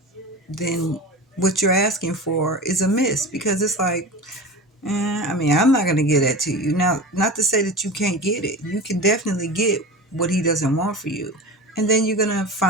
then what you're asking for is a miss because it's like, I mean, I'm not going to get that to you. Now, not to say that you can't get it. You can definitely get what he doesn't want for you. And then you're going to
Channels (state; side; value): normal; both; correlation 0.30